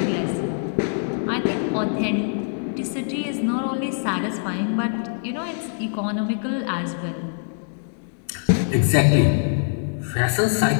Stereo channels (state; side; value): silent; right; 63 dB below the other